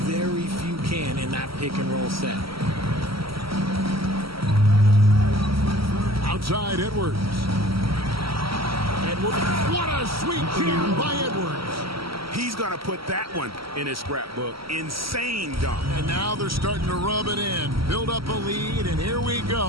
very few can in that pick-and-roll set. Outside, Edwards. What a sweet jam by Edwards. He's going to put that one in his scrapbook. Insane dunk. And now they're starting to rub it in. Build up a lead, and here we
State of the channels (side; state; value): left; late; 0.75 ms